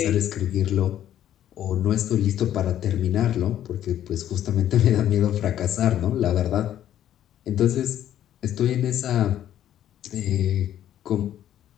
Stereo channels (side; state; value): right; quieter; 11.3 dB